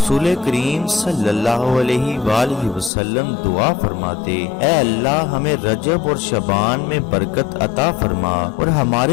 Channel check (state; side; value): drops out; right; at 2.9 s